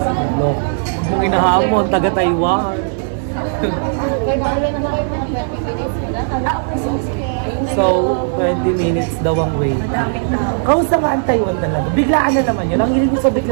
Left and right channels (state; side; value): silent; left; digital silence